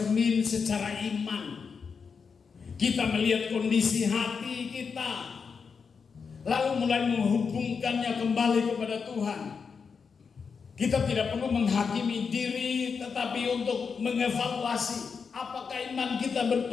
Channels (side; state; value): right; quieter; 5.7 dB